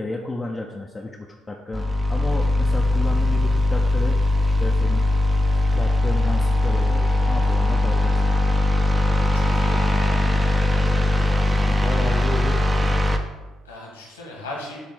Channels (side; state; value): both; normal; correlation 0.92